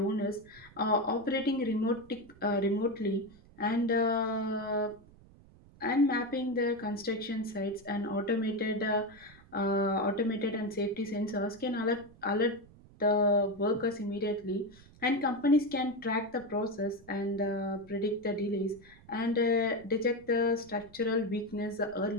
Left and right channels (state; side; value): noise; right; rumble, 24 dB below the sound